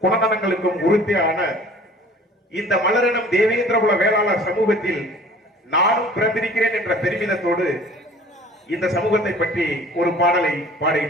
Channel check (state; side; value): normal; both; correlation 0.48